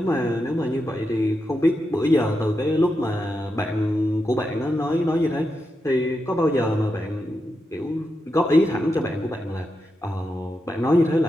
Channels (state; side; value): normal; both; correlation 0.87